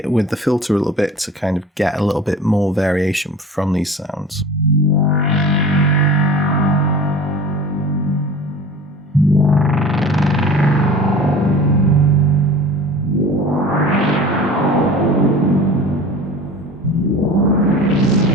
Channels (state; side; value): normal; both; correlation 0.40